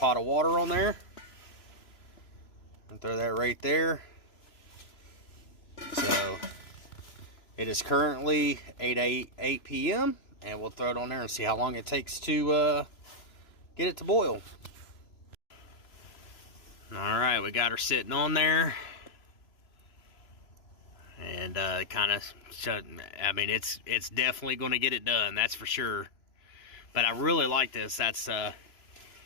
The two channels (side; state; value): right; late; 3.0 ms